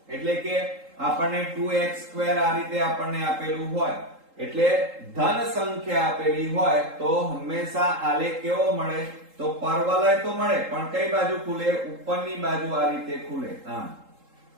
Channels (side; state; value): left; late; 3.8 ms